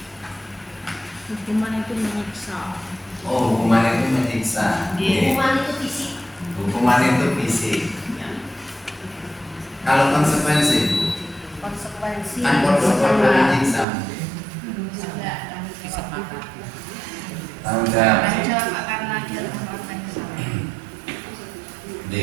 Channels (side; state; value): left; drops out; at 13.9 s